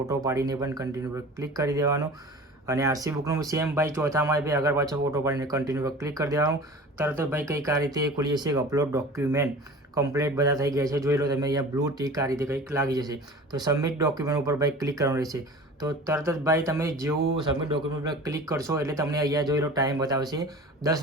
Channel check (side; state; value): both; normal; correlation 0.39